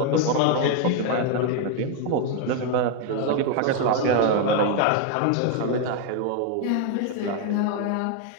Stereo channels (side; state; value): both; different; correlation 0.01